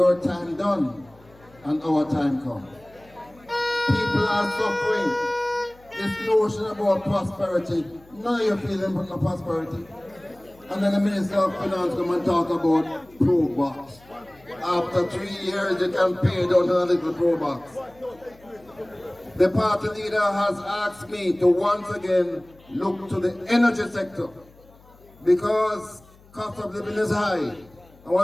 time done and our time come. People are suffering. This notion about prosperity, now you're feeling no prosperity. And then the Minister of Finance come and talk about pro box. After 3 years, you can pay down to a little pro box. The party leader has asked me to once again look to the energy sector because cost of living is high. And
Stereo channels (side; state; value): left; noise; hum, 27 dB below the sound